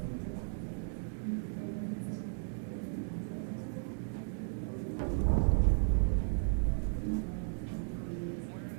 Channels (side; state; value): left; silent; 54 dB below the other